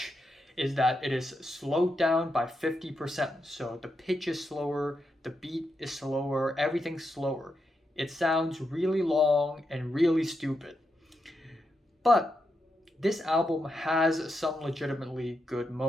is that it is slowed down by 50%, so the pitch is slower, the beat is slower, everything's slower. It sounds really long and really stupid. But this album has some legitimately good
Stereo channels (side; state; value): both; normal; correlation 0.85